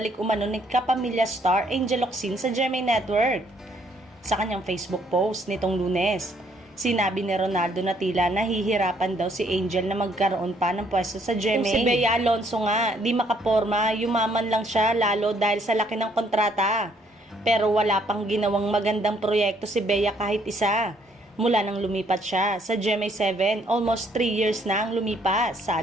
umano ni kapamilya star Angel Locsin sa GMA Network. Sa kanyang Facebook post nitong Lunes, sinabi ni Ronaldo na tila nahihirapan daw si Angel na magkaroon pa ng pwesto sa GMA. Kung si Bea Alonzo nga, di makaporma, yumaman lang siya lalo dahil sa laki ng kontrata. Pero wala pang ginawang magandang proyekto si Bea kahit isa. Mula nang lumipat siya sa GMA7, almost 3 years na ang lumipas,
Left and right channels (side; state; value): both; normal; correlation 0.67